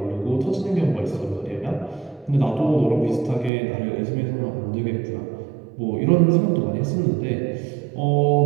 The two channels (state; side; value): drops out; left; at 3.5 s